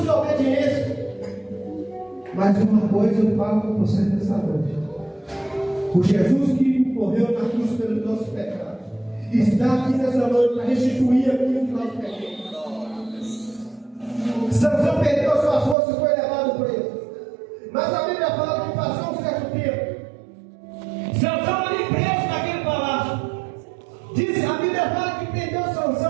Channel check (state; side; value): drops out; left; at 15.8 s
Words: Mas uma coisa eu falo com você nessa noite: o Jesus que morreu na cruz pelos nossos pecados está aqui nessa noite para restituir aquilo que nós perdemos. Sansão perdeu a sua força e foi levado preso. Mas a Bíblia fala que passou um certo tempo, Sansão ali preso naquele palácio. Diz, a Bíblia fala que prendeu